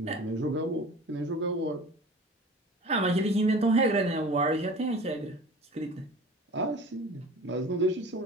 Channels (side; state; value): both; normal; correlation 0.40